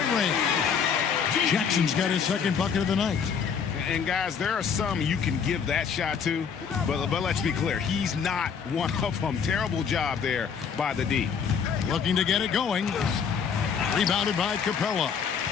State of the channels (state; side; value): quieter; right; 6.7 dB